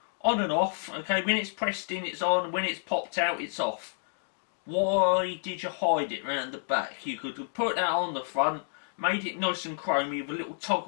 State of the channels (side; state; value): right; silent; digital silence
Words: on and off. Okay, when it's pressed in it's on, when it's popped out it's off. Why did you hide it around the back? You could have put that on the front, made it nice and chromy with a little